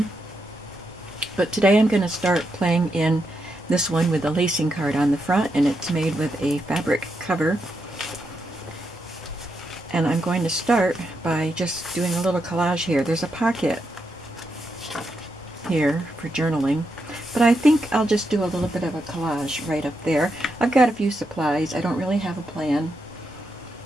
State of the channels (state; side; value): normal; both; correlation 0.83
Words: But today I'm going to start playing in this one with a lacing card on the front, and it's made with a fabric cover. And I'm going to start by just doing a little collage here. There's a pocket here for journaling, but I think I'll just do a little bit of a collage right up there. I've got a few supplies. I don't really have a plan.